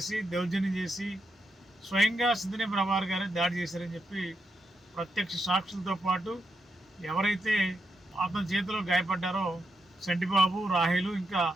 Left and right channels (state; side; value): normal; both; correlation 0.83